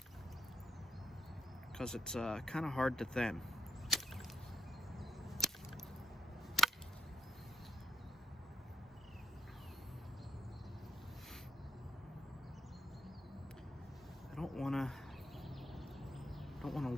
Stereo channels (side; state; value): both; normal; correlation 0.80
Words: because it's kind of hard to thin. I don't want to